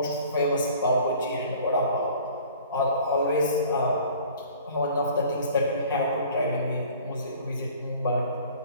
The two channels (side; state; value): both; inverted; correlation -0.49